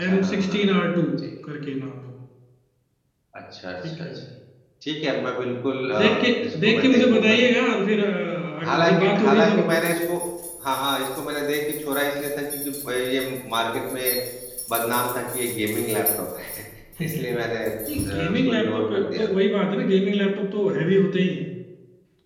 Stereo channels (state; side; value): identical; both; correlation 1.00